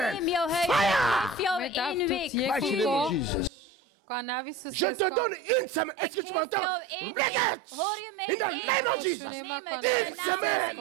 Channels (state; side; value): drops out; left; at 3.5 s